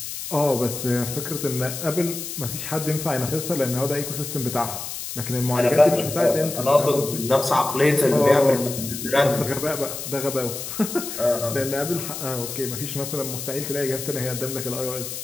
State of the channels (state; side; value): noise; left; hiss, 7 dB below the sound